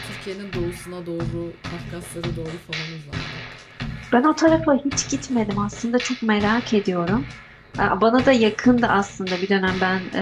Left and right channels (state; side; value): identical; both; correlation 1.00